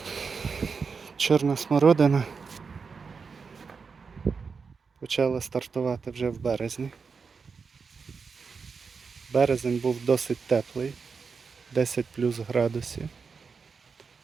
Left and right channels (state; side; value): quieter; left; 5.2 dB